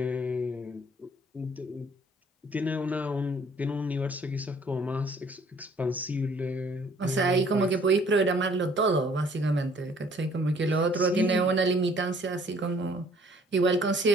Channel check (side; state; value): both; normal; correlation 0.58